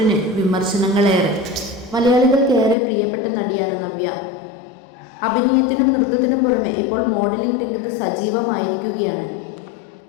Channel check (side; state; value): right; drops out; at 2.8 s